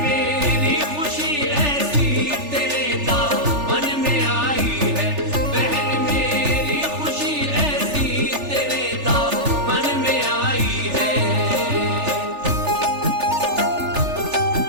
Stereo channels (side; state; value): left; late; 3.4 ms